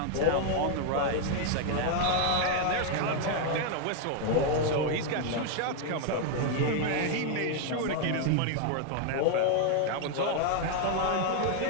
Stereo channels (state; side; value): different; both; correlation 0.00